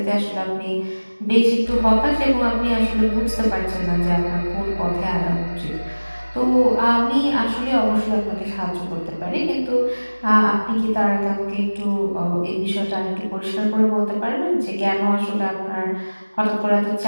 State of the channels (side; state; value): both; inverted; correlation -1.00